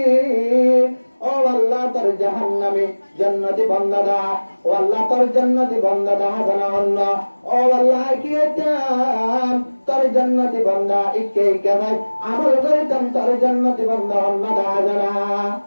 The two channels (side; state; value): both; inverted; correlation -1.00